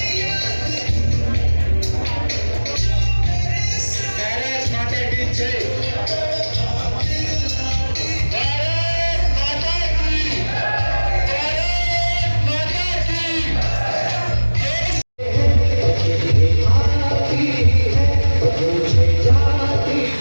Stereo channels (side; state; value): both; inverted; correlation -1.00